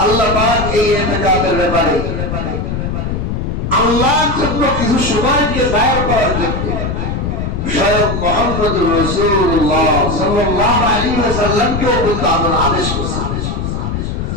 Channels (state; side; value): noise; left; rumble, 3 dB below the sound